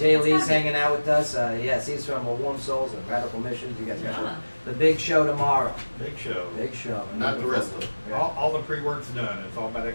Lee's hanging out with us. Yes, he's from Warm Souls and Radical Missions. You guys got Yeah. the big show tomorrow. Big show. Big show. Not the rest of it. Yeah. All the pre-work's done. It's all about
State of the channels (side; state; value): both; inverted; correlation -1.00